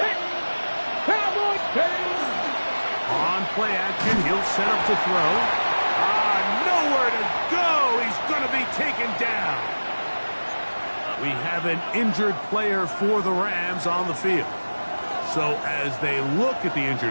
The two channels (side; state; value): both; inverted; correlation -1.00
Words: Cowboys! Hey! On play action, he'll set up to throw. Nowhere to go. He's going to be taken down. We have an injured player for the Rams on the field. So as they look at the